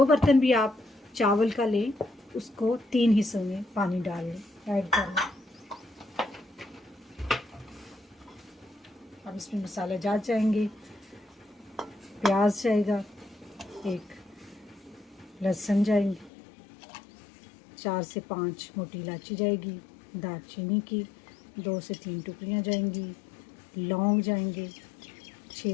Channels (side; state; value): right; drops out; at 16.3 s